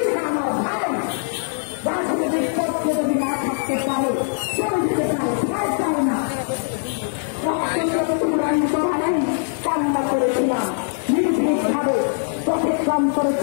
আমার ভাই। রাজনৈতিক পক্ষে যদি না থাকতে পারে চলে যেতে পারে, ভয় পায় না। কান্না করেছিলাম নির্ভীকভাবে, পথে কম করে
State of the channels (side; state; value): right; silent; 64 dB below the other